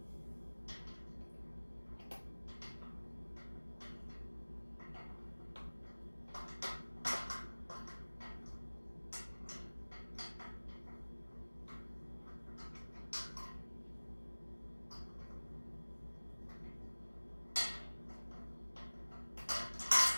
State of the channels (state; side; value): inverted; both; correlation -1.00